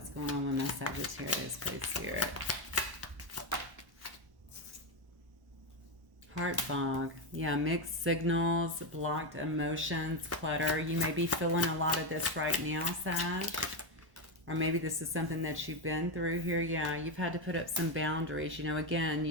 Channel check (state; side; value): late; left; 1.1 ms